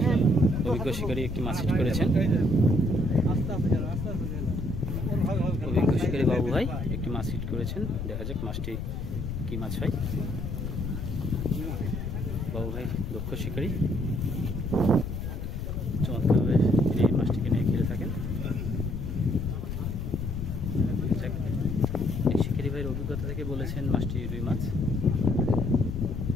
অভিজ্ঞ শিকারী একটি মাছ হিট করেছেন। অভিজ্ঞ শিকারী বাবু ভাই একটি মাছ হিট করেছেন। দেখা যাক মাছটি কি মাছ হয়। বাবু ভাই দক্ষ শিকারী, চমৎকারভাবে এই মাছটিকে নিয়ে খেলে থাকেন। শিকারী ভাইয়ের অভিজ্ঞতা থেকে বলেছেন মাছটি রুই মাছ।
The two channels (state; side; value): noise; left; rumble, 4 dB below the sound